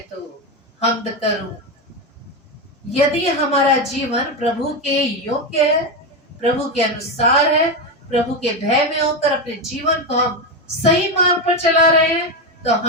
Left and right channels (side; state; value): both; normal; correlation 0.12